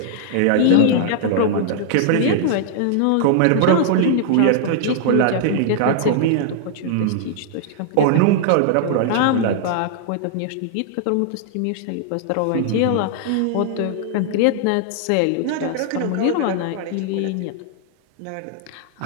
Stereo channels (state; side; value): different; both; correlation -0.01